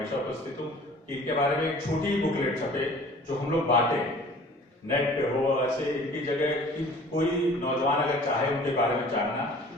उपस्थित हूँ कि इनके बारे में एक छोटी बुकलेट छपे जो हम लोग बांटे, नेट पे हो, ऐसे इनकी जगह कि कोई नौजवान अगर चाहे उनके बारे में जानना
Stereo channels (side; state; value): both; normal; correlation 0.48